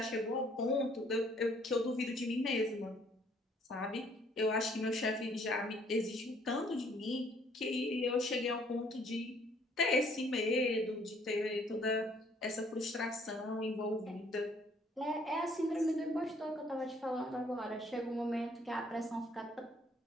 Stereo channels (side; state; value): both; normal; correlation 0.62